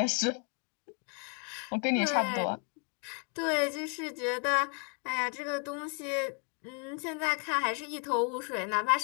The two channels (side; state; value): right; quieter; 39.0 dB